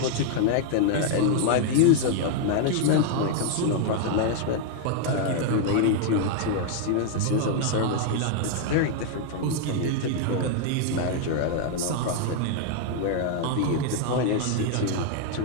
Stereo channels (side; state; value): both; different; correlation 0.00